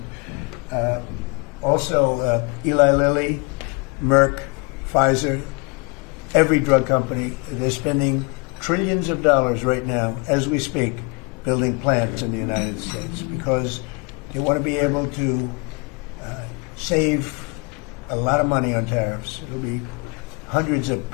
Also, Eli Lilly, Merck, Pfizer, every drug company, they're spending trillions of dollars right now, as we speak, building plants in the United States because they want to be able to save a lot of money on tariffs. It'll be hundreds of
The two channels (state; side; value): quieter; right; 31.2 dB